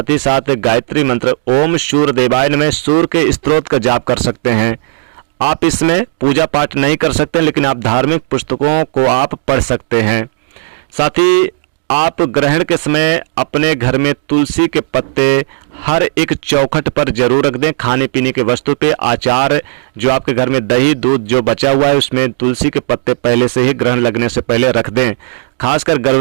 ही साथ गायत्री मंत्र, ओम सूर्य देवाय नमः, सूर्य के स्तोत्र का जाप कर सकते हैं। आप इसमें पूजा पाठ नहीं कर सकते, लेकिन आप धार्मिक पुस्तकों को आप पढ़ सकते हैं। साथ ही आप ग्रहण के समय अपने घर में तुलसी के पत्ते हर एक चौखट पर जरूर रख दें। खाने पीने के वस्तु पे, आचार, जो आपके घर में दही दूध जो बचा हुआ है उसमें तुलसी के पत्ते पहले से ही ग्रहण लगने से पहले रख दें। खासकर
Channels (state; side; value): silent; left; digital silence